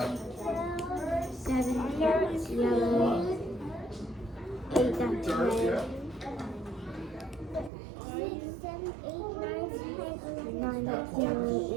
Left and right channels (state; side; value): drops out; left; at 7.7 s